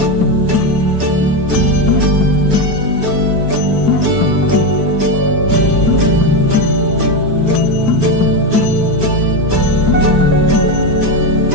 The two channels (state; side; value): late; left; 4.6 ms